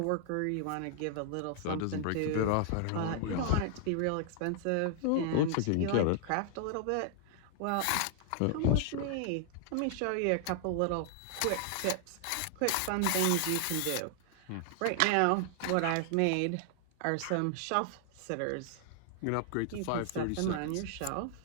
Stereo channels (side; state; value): both; different; correlation 0.00